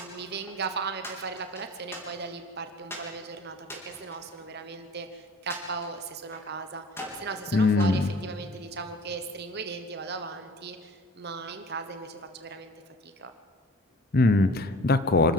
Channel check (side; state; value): both; normal; correlation 0.45